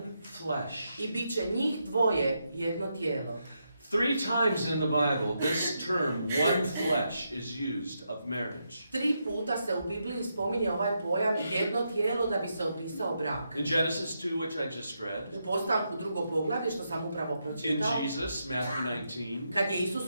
flesh. I bit će njih dvoje jedno tijelo. 3 times in the Bible, this term, one flesh, is used of marriage. 3 puta se u Bibliji spominje ovaj pojam jedno tijelo da bi se opisao brak. In Genesis 2, which I just read. U Postanku 2. poglavlje, što sam upravo pročitao. In Jesus, Matthew 19. Kad je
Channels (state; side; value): inverted; both; correlation -0.82